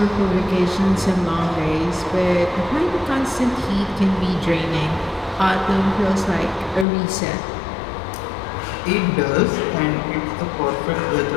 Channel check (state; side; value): drops out; right; at 6.9 s